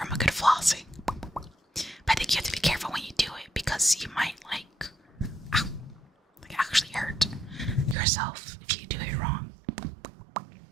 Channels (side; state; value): left; drops out; at 8.0 s